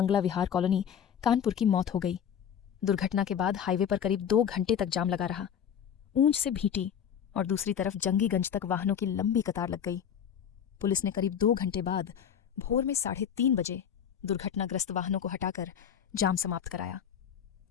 विहार कॉलोनी कानपुर की मौत हो गई। दुर्घटना के बाद हाईवे पर करीब 2 घंटे तक जाम लगा रहा। ऊंच से भीटी और दूसरी तरफ जंगीगंज तक वाहनों की लंबी कतार लग गई। पुलिस ने करीब 2 घंटे बाद भोर में 3:30 बजे दुर्घटनाग्रस्त वाहनों को हटाकर जाम समाप्त कराया।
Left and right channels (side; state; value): right; quieter; 8.6 dB